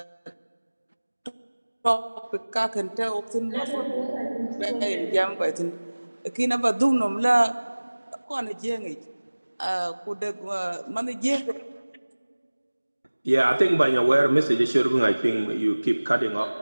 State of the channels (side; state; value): both; inverted; correlation -1.00